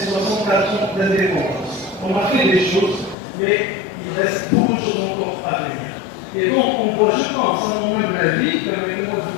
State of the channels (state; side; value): drops out; right; at 3.2 s